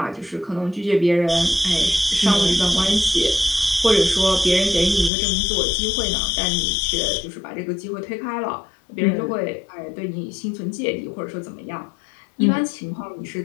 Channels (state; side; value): drops out; right; at 5.1 s